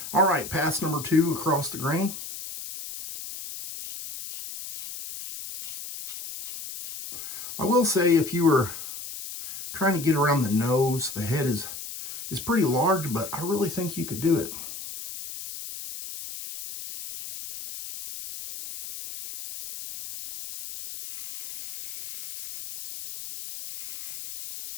All right, pass number 2 across the grain. I will say, if you were trying to get around the nose, the head is pretty large, but I really think you could do it.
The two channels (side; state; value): left; noise; hiss, 10 dB below the sound